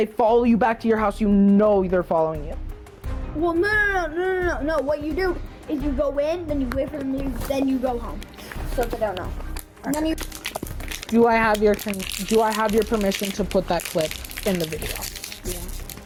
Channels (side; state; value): both; identical; correlation 1.00